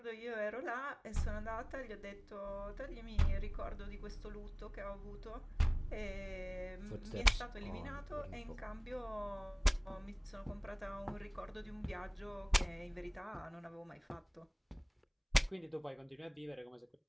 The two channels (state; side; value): identical; both; correlation 1.00